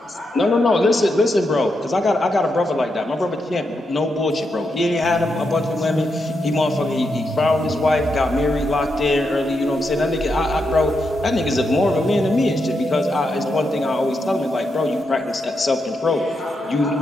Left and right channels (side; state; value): both; normal; correlation 0.84